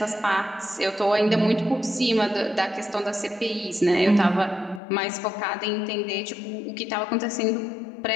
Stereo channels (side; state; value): right; drops out; at 4.8 s